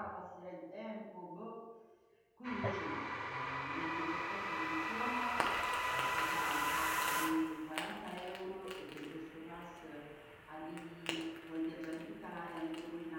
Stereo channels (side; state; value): both; identical; correlation 1.00